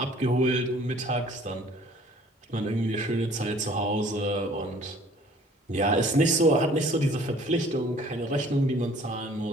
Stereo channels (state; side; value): normal; both; correlation 0.54